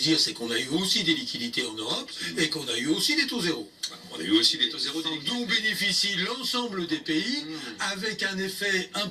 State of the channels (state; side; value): identical; both; correlation 1.00